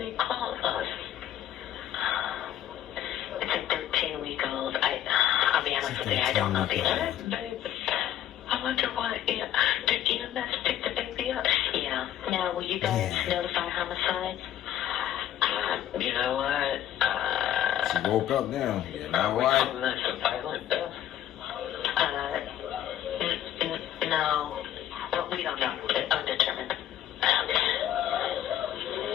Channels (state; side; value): quieter; right; 11.7 dB